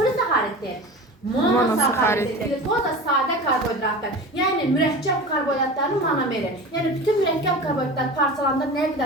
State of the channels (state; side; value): normal; both; correlation 0.33